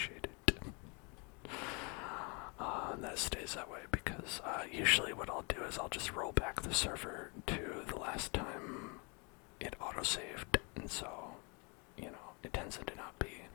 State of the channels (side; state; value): right; quieter; 32.3 dB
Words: it. And that stays that way because usually what I'll do is I'll just roll back the server to the last time it autosaved, and so, you know, it tends to not be